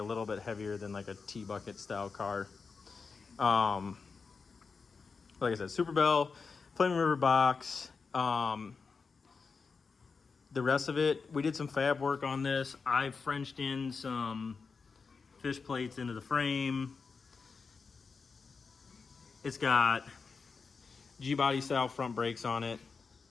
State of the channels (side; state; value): right; quieter; 4.9 dB